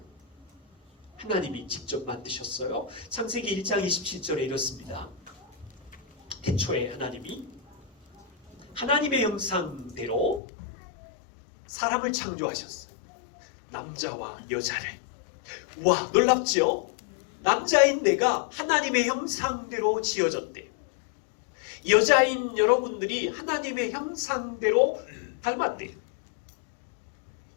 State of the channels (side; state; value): right; drops out; at 10.4 s